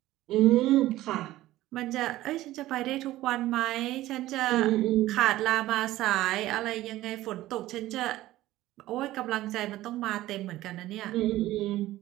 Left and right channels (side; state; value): left; quieter; 15.8 dB